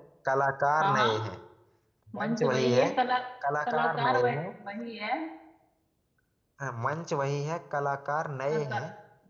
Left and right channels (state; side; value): identical; both; correlation 1.00